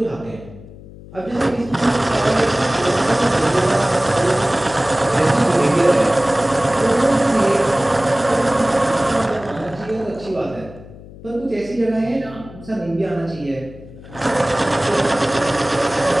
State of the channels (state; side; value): noise; left; hum, 18 dB below the sound